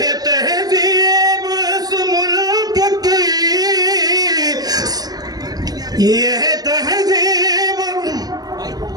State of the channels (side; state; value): left; late; 0.19 ms